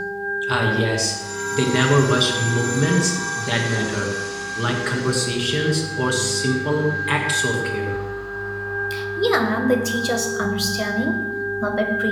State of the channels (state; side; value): identical; both; correlation 1.00